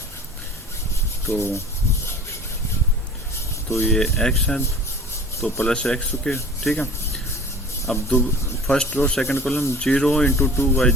तो ये एक्स है तो प्लस एक्स के। ठीक है, अब first row second column 0 into 2 Y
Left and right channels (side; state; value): both; normal; correlation 0.43